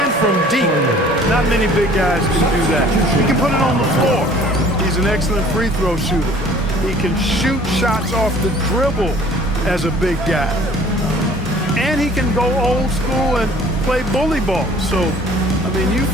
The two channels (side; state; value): both; normal; correlation 0.52